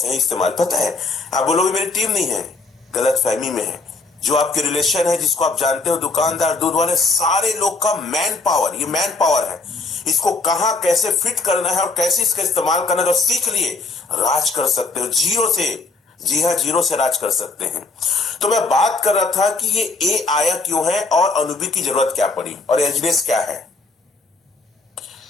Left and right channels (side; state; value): right; quieter; 3.7 dB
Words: इस्तेमाल। पता है, आप बोलोगे मेरी टीम नहीं है, गलत फहमी में है। जो आपके रिलेशन है, जिसको आप जानते हो, दुकानदार, दूध वाले, सारे लोग का मैन पावर, ये मैन पावर है। इसको कहां कैसे फिट करना है और कैसे इसका इस्तेमाल करना है, अगर सीख लिए, राज कर सकते हो जीरो से। जी हाँ, जीरो से राज कर सकते हैं। तो मैं बात कर रहा था कि ये ए आया क्यों है, और अनुबी की जरूरत क्या पड़ी, और एलजीनेस क्या है।